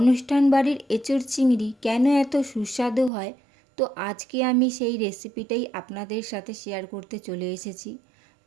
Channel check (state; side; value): drops out; left; at 3.1 s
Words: বাড়ির এঁচোড় চিংড়ি কেন এত সুস্বাদু হয়, তো আজকে আমি সেই রেসিপিটাই আপনাদের সাথে শেয়ার করতে চলে এসেছি।